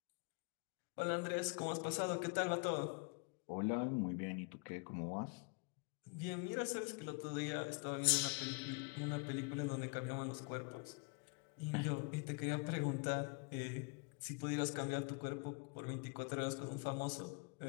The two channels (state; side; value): quieter; right; 34.8 dB